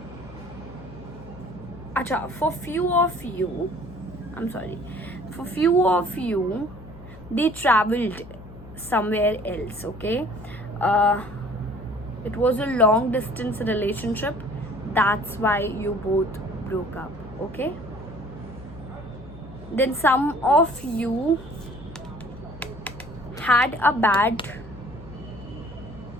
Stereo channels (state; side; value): noise; left; hum, 17 dB below the sound